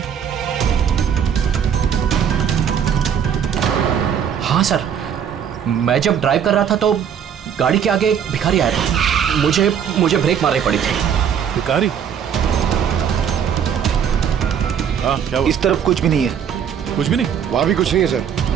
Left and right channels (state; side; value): quieter; left; 8.2 dB